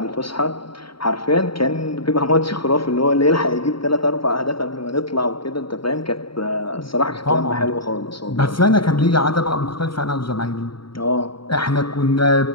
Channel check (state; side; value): late; right; 0.74 ms